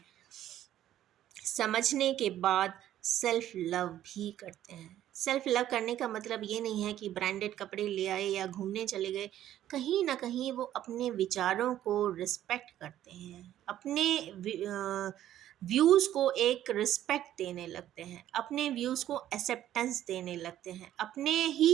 समझने के बाद सेल्फ लव भी करते हैं। सेल्फ लव करने का मतलब ये नहीं है कि ब्रांडेड कपड़े ले आए या घूमने चले गए, कहीं ना कहीं वो अपने विचारों को रिस्पेक्ट करते हैं, अपने व्यूज़ को एक रिस्पेक्ट देने लगते हैं, अपने व्यूज़ को एक्सेप्टेंस देने लगते हैं, अपने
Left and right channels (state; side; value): quieter; left; 12.2 dB